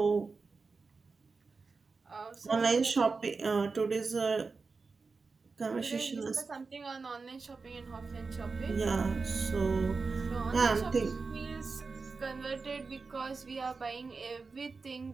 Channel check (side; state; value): left; quieter; 4.4 dB